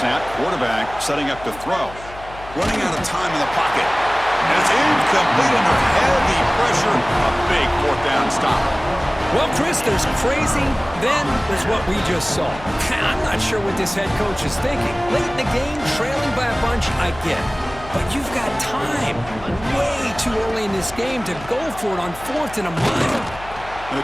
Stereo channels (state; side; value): noise; left; hum, 17 dB below the sound